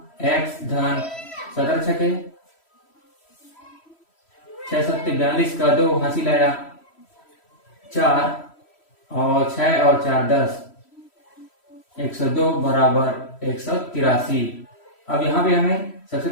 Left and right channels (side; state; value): right; late; 3.1 ms